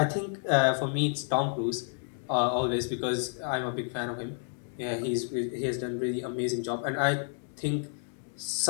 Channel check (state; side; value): silent; right; 58 dB below the other